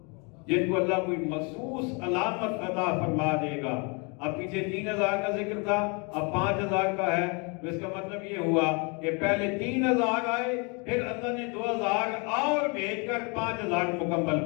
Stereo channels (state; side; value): quieter; right; 32.4 dB